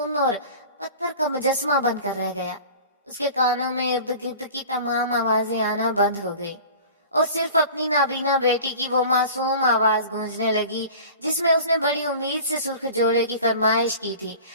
اور پتھر کا مجسمہ بن کر رہ گیا۔ اس کے کانوں میں ارد گرد کی تمام آوازیں آنا بند ہو گئی، اور صرف اپنی نابینا بیٹی کی وہ معصوم آواز گونجنے لگی جس میں اس نے بڑی امید سے سرخ جوڑے کی فرمائش کی تھی،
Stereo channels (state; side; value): inverted; both; correlation -0.40